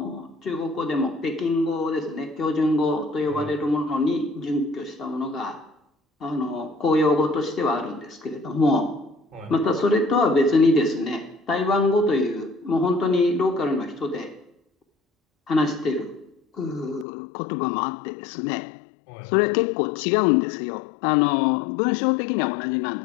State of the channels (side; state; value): right; drops out; at 17.1 s